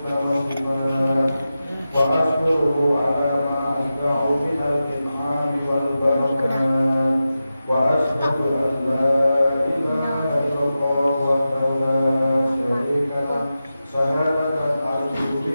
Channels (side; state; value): both; inverted; correlation -0.93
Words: wal sifat wa ashkuruhu ala ma asda'u minal in'ami wal barakat wa ashhadu an la ilaha illallah wahdahu la syarika lah syahadatan arju